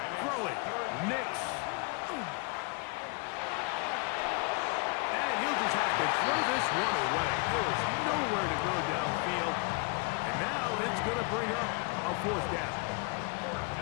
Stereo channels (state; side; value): quieter; right; 32.1 dB